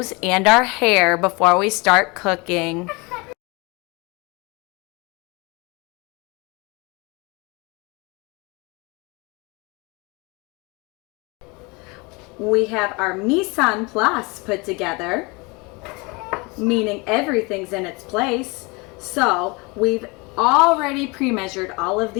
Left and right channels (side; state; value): right; quieter; 27.3 dB